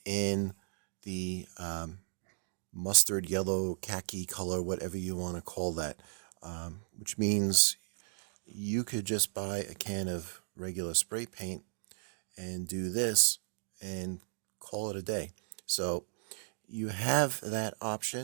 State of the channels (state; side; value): silent; left; digital silence